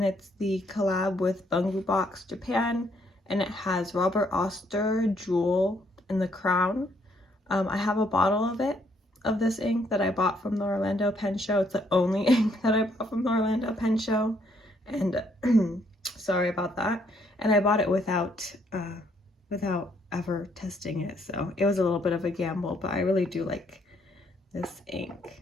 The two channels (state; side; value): normal; both; correlation 0.70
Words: it's the collab with Bungu Box Japan, and it has Robert Oster jewel in the crown. I have a bottle of this ink that I bought from the Orlando Pen Show. It's the only ink that I bought from the Orlando Pen Show, and sorry about that. And I bought it without ever testing it, so it was a little bit of a gamble, but I really do like this ink.